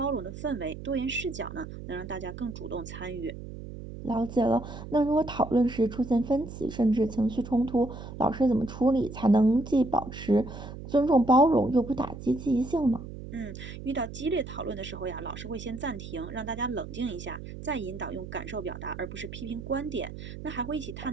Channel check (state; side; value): noise; right; hum, 11 dB below the sound